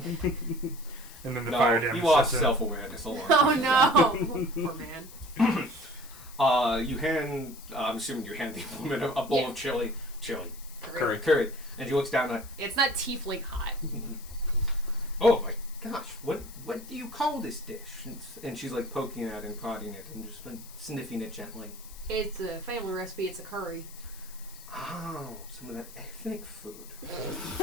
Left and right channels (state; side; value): noise; left; hiss, 18 dB below the sound